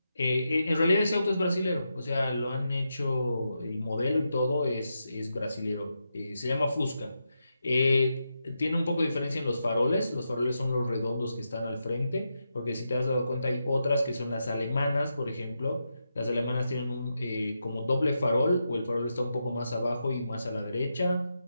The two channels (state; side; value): inverted; both; correlation -0.86